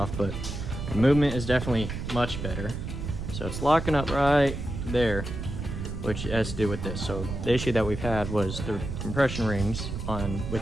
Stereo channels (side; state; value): right; noise; rumble, 6 dB below the sound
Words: but the movement is definitely much better. So it's locking up right there, which has to do with this. So the issue that we've had was the compression rings